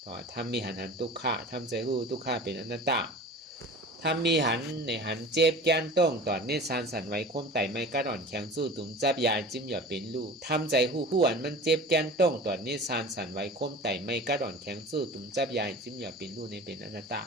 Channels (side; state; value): both; normal; correlation 0.38